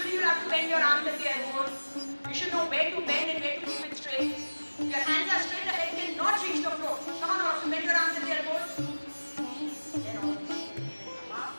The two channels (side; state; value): both; inverted; correlation -1.00